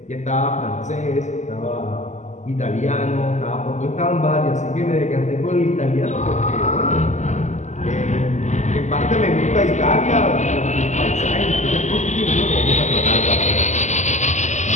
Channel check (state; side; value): late; right; 0.34 ms